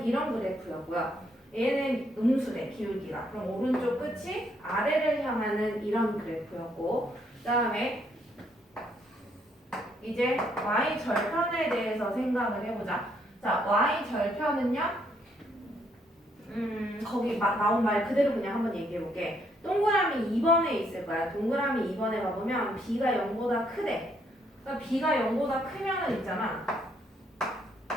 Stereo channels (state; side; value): normal; both; correlation 0.71